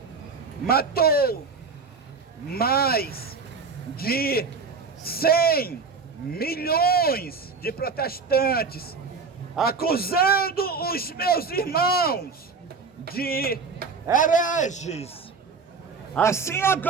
matou mais de 100 milhões de protestantes, acusando os meus irmãos de hereges. Assim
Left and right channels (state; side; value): quieter; left; 4.8 dB